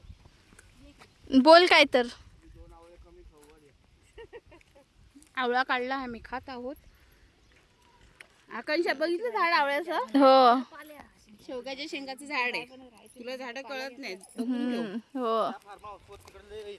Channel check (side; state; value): both; identical; correlation 1.00